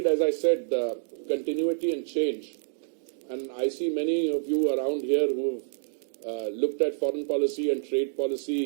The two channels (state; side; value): silent; left; digital silence